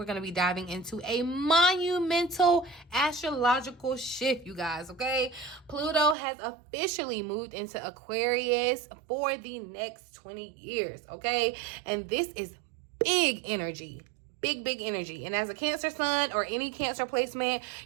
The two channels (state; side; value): drops out; left; at 6.2 s